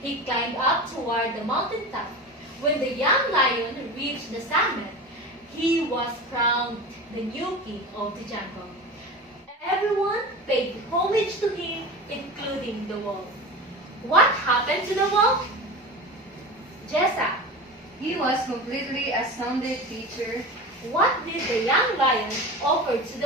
He climbed up toward the mountain top. When the young lion reached the summit, he was crowned the new king of the jungle. Everyone paid homage to him, including the wolf. What happened to the wolf? Jessa. He was completely astounded, teacher. What did the young lion offer to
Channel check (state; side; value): normal; both; correlation 0.30